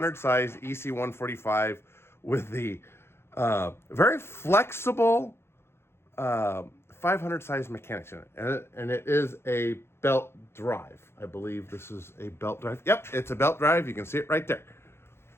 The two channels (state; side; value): late; right; 0.12 ms